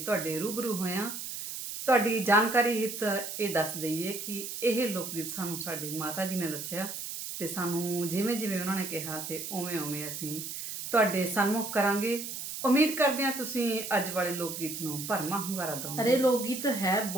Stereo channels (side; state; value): right; noise; hiss, 7 dB below the sound